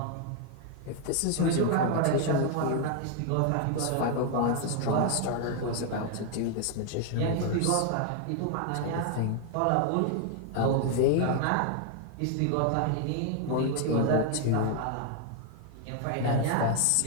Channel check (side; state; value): both; different; correlation 0.00